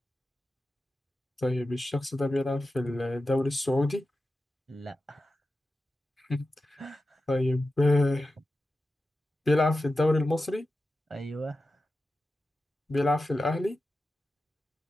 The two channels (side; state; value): both; normal; correlation 0.93